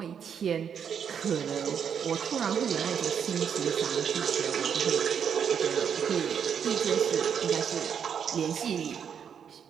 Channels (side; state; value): left; quieter; 7.7 dB